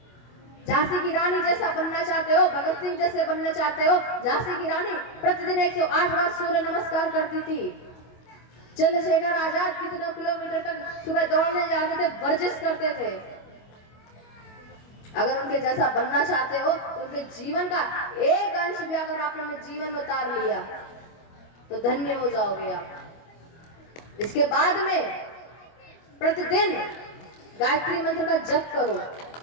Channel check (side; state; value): right; late; 25 ms